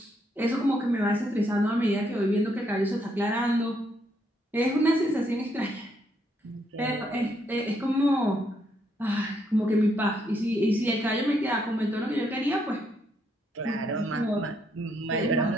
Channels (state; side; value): normal; both; correlation 0.74